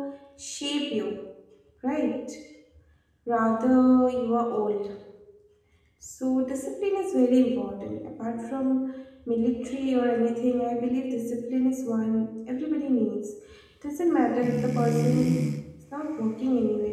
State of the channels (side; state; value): both; identical; correlation 1.00